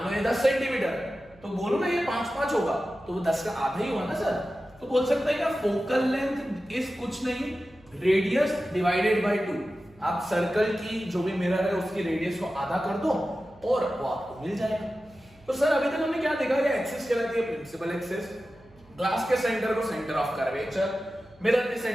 लो ये 10 सेंटीमीटर, तो बोलो ना ये 5-5 होगा, तो वो 10 का आधा ही हुआ ना सर। तो बोल सकते हैं कि फोकल लेंथ इज कुछ नहीं, रेडियस डिवाइडेड बाय 2। आप सर्कल की जो भी मिरर है उसकी रेडियस को आधा कर दो और वो आपको मिल जाएगा। तो सर अभी तक हमने क्या देखा? ये एक्सिस कहलाती है प्रिंसिपल एक्सिस, ग्लास के सेंटर को सेंटर ऑफ कर्वेचर, मिरर के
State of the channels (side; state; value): right; noise; hum, 27 dB below the sound